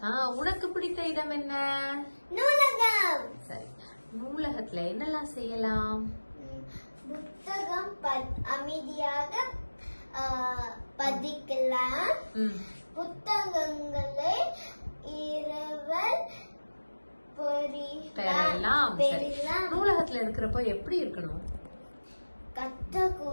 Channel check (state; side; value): inverted; both; correlation -1.00